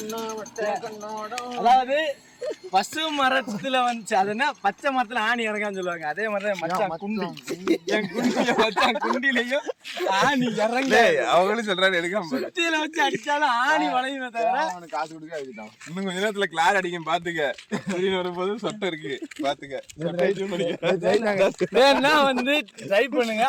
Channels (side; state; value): both; identical; correlation 1.00